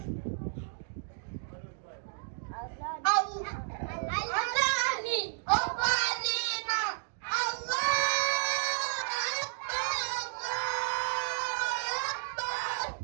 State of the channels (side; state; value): left; silent; 56 dB below the other